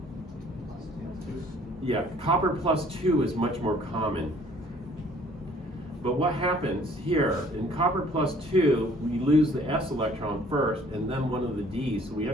Yeah, copper plus 2 is much more common. But what happens here, in copper plus 2, we lose the s electron first and then one of the d's, so we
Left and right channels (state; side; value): normal; both; correlation 0.57